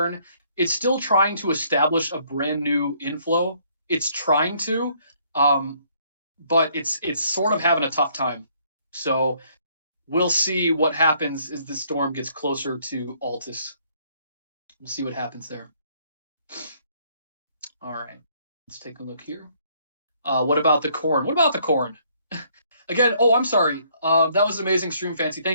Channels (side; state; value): both; inverted; correlation -0.65